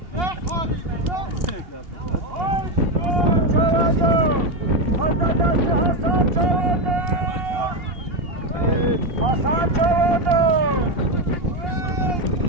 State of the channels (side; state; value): left; late; 2.8 ms